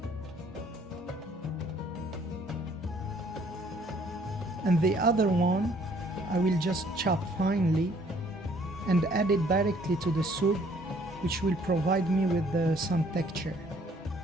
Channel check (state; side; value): normal; both; correlation 0.61